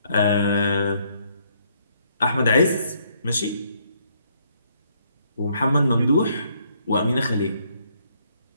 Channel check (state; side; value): inverted; both; correlation -0.69